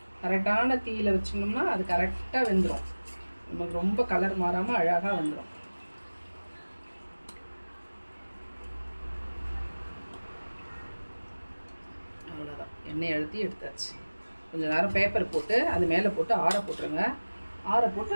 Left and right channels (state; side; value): inverted; both; correlation -1.00